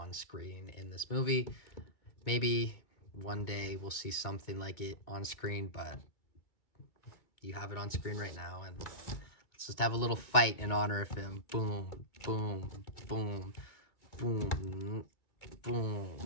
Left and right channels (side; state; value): right; late; 2.2 ms